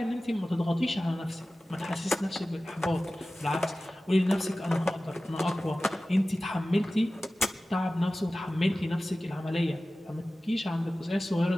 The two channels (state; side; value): normal; both; correlation 0.96